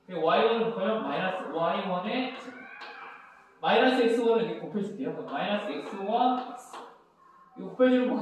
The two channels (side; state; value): both; identical; correlation 1.00